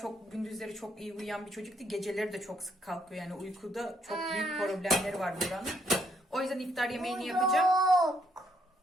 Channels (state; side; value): normal; both; correlation 0.72